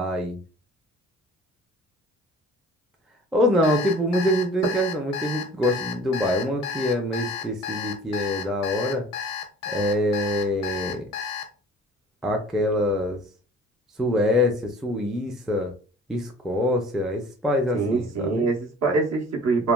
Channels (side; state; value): both; normal; correlation 0.47